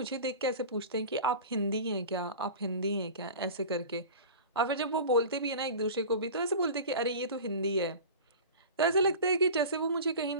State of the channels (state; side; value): inverted; both; correlation -0.35